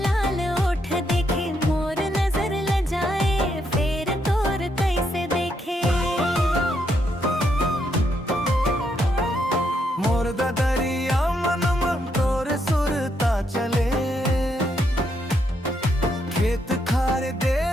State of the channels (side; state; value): both; normal; correlation 0.77